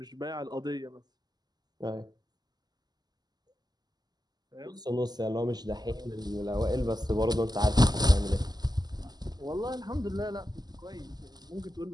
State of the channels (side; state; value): left; late; 0.20 ms